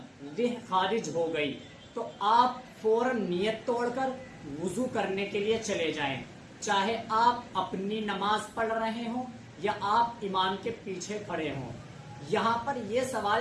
روح خارج ہو گئی تو آپ فوراً نیت توڑ کر وضو کرنے کے لیے چلے جائیں، چاہے آپ اپنی نماز پڑھ رہے ہوں یا آپ امام کے پیچھے کھڑے ہوں۔ یہاں پر یہ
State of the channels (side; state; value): both; identical; correlation 1.00